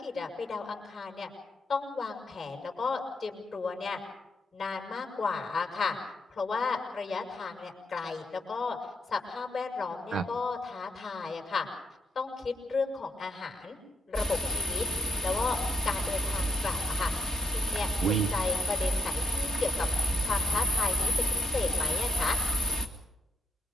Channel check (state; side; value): normal; both; correlation 0.72